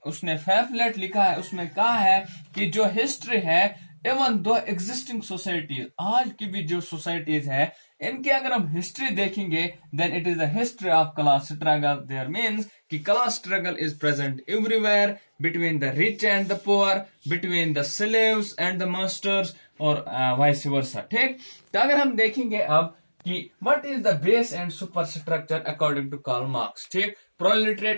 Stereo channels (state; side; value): inverted; both; correlation -1.00